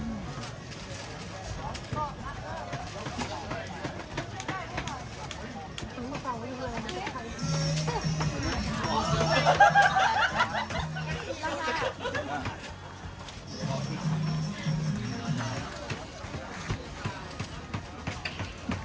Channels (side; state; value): both; identical; correlation 1.00